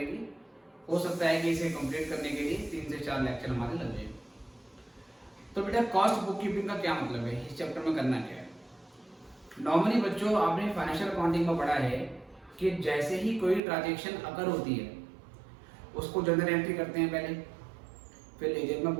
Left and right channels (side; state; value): left; drops out; at 13.6 s